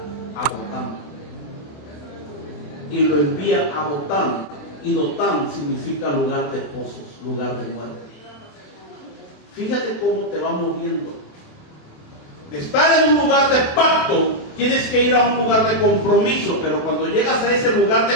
a Dotán. Y lo envía a Dotán. Y Dotán significa lugar de pozos, lugar de muerte. Fíjate cómo te va moviendo. De estar en un lugar de pacto, tienes que ir a un lugar de compromiso, pero cuando llegas a ese lugar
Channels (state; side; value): late; right; 27 ms